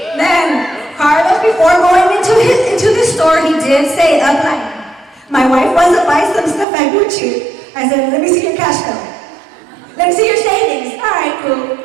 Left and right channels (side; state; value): left; drops out; at 6.7 s